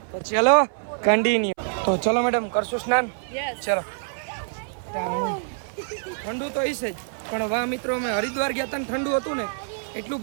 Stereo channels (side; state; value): left; silent; 58 dB below the other